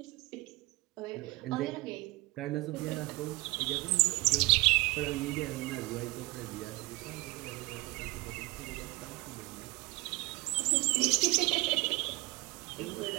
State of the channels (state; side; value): quieter; left; 23.5 dB